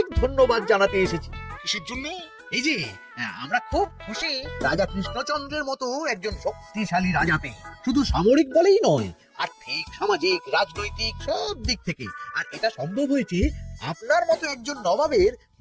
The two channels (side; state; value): both; identical; correlation 1.00